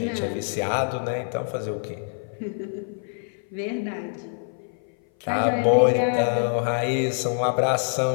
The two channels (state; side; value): silent; right; 58 dB below the other